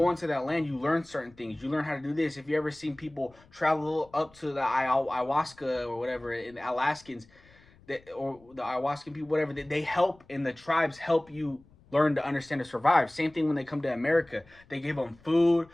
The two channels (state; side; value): noise; left; rumble, 28 dB below the sound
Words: into that land, you learn certain things. You learn how to do this. If you ever seen people travel up to the ayahuasca or whatever, in the Alaskans, or the ayahuascan people, whatever, they help, and the tribes help you learn to understand to survive. Same thing when they come to America. They give them food.